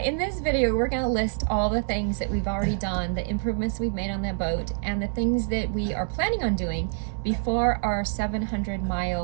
In this video, we're going to list all the things that we've already done, the improvements we've made on that boat, and the things that we are planning on doing before our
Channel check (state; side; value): silent; left; 61 dB below the other